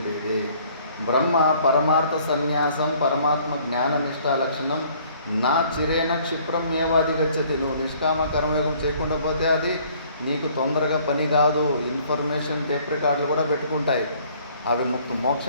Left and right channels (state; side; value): inverted; both; correlation -0.58